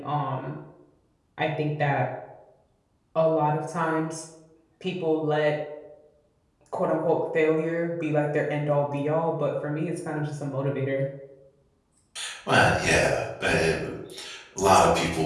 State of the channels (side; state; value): both; identical; correlation 1.00